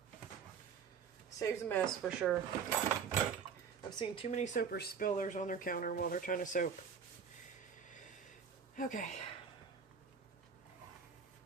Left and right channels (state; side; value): quieter; left; 6.6 dB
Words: Saves a mess for sure. I've seen too many soapers spill theirs on their counter while they're trying to soap. Okay.